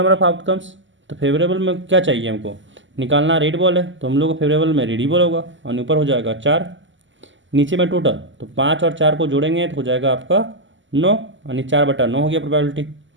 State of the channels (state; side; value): late; left; 0.55 ms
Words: ऑफ आउटकम्स। तो फेवरेबल में क्या चाहिए हमको निकालना, रेड बॉल है तो हम लोग को फेवरेबल में रेड ही बॉल होगा, और ऊपर हो जाएगा 4, नीचे में टोटल तो 5 और 4 को जोड़ेंगे तो हो जाएगा आपका 9, यानी 4/9 हो गया प्रोबेबिलिटी।